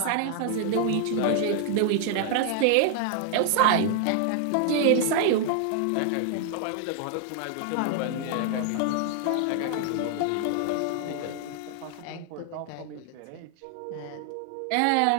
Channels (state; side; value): different; both; correlation 0.00